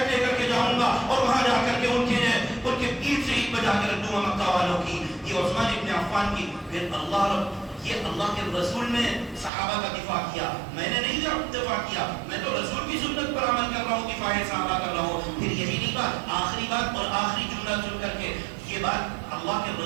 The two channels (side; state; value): left; drops out; at 9.5 s